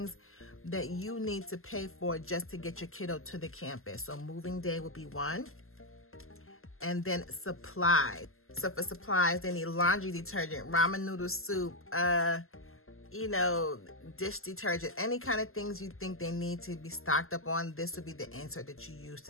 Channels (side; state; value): right; late; 0.62 ms